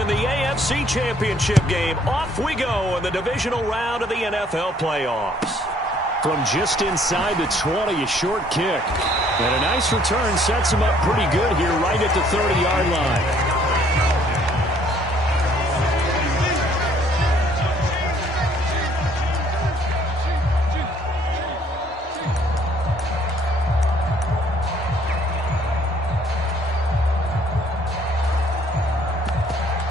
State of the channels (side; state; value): both; normal; correlation 0.62